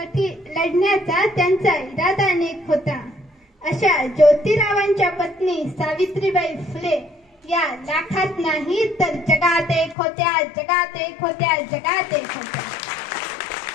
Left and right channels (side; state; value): right; drops out; at 10.0 s